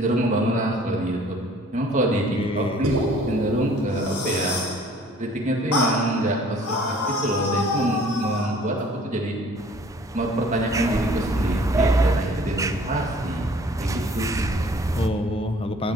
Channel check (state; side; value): normal; both; correlation 0.54